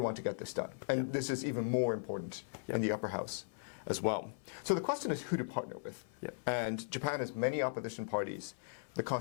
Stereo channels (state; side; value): silent; right; 52 dB below the other